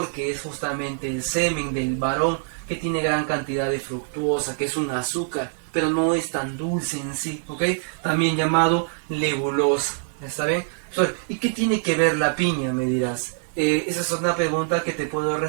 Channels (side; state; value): left; silent; 62 dB below the other